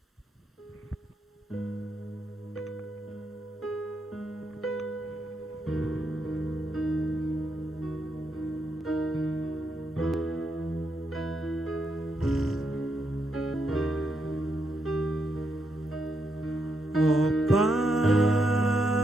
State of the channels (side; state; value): both; normal; correlation 0.80